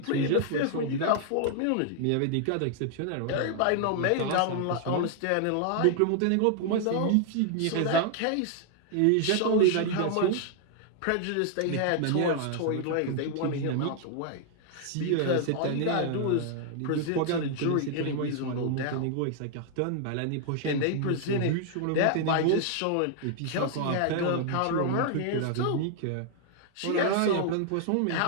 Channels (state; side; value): different; both; correlation 0.00